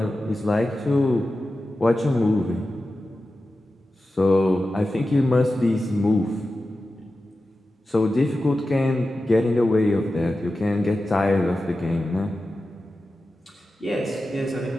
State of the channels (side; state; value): both; normal; correlation 0.93